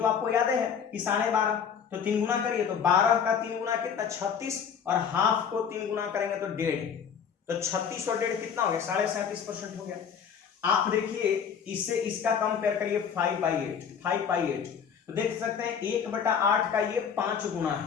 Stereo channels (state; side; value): quieter; right; 7.3 dB